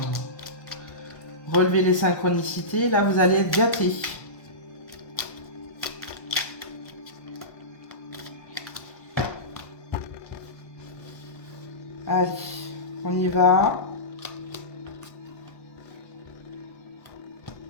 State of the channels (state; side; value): late; right; 1.2 ms